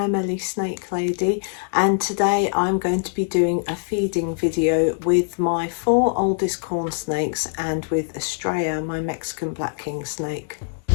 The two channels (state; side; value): silent; right; digital silence